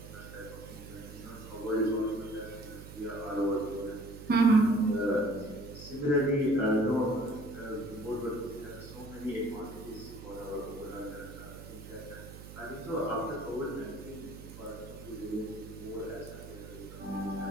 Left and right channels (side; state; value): right; noise; hum, 13 dB below the sound